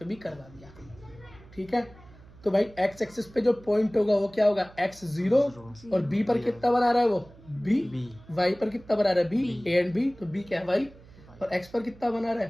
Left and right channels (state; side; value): noise; right; hum, 23 dB below the sound